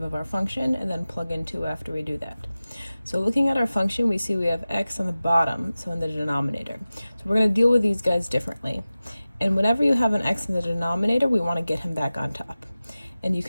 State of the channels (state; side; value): inverted; both; correlation -0.96